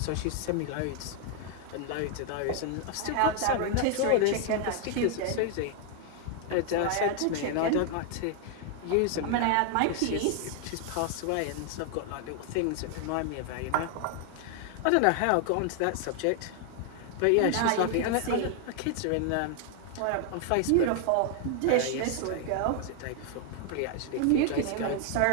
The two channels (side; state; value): both; different; correlation 0.00